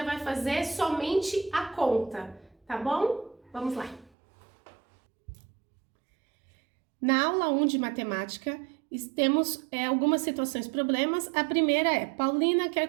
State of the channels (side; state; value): left; drops out; at 4.1 s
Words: vai fazer somente a conta, tá bom? Vamos lá. Na aula 1 de matemática, temos algumas situações problemas. A primeira é, Paulina